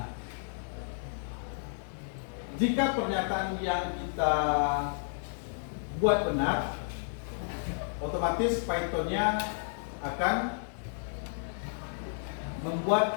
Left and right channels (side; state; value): right; silent; digital silence